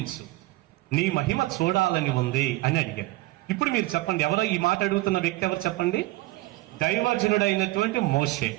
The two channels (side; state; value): left; quieter; 19.7 dB